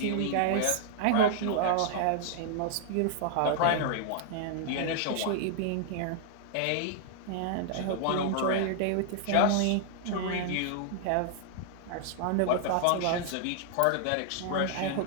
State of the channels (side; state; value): both; different; correlation -0.01